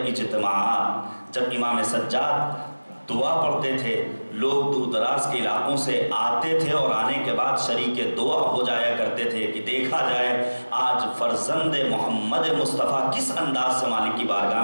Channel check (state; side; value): inverted; both; correlation -1.00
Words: اجتماعات جب امام سجاد دعا پڑھتے تھے، لوگ دور دراز کے علاقوں سے آتے تھے اور آنے کے بعد شریک دعا ہو جایا کرتے تھے کہ دیکھا جائے آج فرزند محمد مصطفیٰ کس انداز سے مالک کی